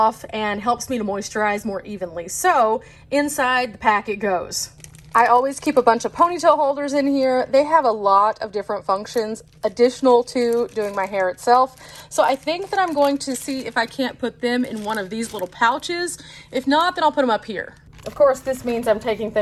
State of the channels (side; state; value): both; identical; correlation 1.00